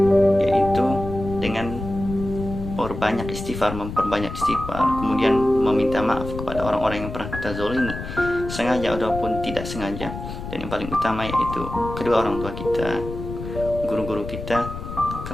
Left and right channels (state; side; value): noise; left; rumble, 9 dB below the sound